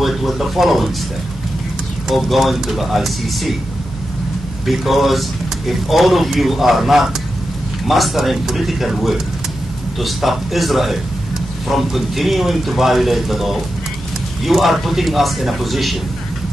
it with the following step of going to the ICC. Because if all of you are not mastering political will to stop Israel from continuing to violate the law, you are putting us in a position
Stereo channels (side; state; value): both; normal; correlation 0.89